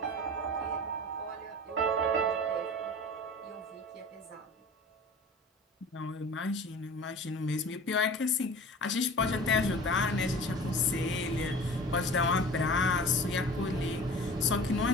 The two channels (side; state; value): both; normal; correlation 0.40